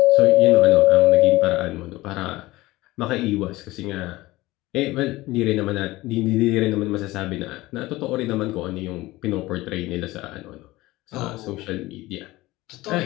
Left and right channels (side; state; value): right; quieter; 19.0 dB